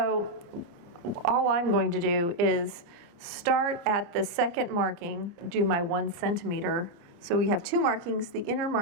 all I'm going to do is start at the second marking, do my 1 centimeter. So we have 2 markings. The inner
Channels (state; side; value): late; left; 29 ms